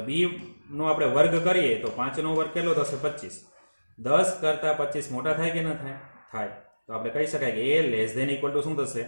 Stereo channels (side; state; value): both; inverted; correlation -1.00